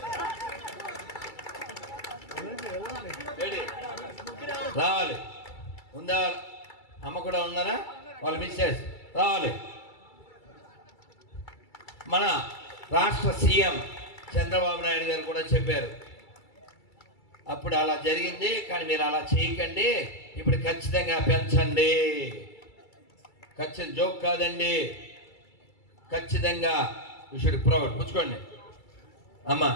రావాలి. ఉందా? అమ్మ కూడా ఉన్నారా? వాళ్ళు మిస్సెస్ రావాలి. మన రాష్ట్ర సీఎం చంద్రబాబు నాయుడు గారు కూడా చెప్పారు, అప్పుడు అలా జరిగింది కానీ మీరు అలా చేయకండి, ఇప్పుడు ఖచ్చితంగా పెంచండి. ఖచ్చితంగా జోక్ కాదండి, ఖచ్చితంగా యూ షుడ్ ప్రౌడ్. పుచ్చుకోండి అమ్మ,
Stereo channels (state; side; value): late; right; 2.3 ms